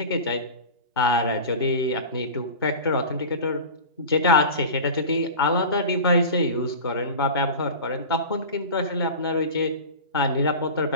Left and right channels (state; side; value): inverted; both; correlation -0.32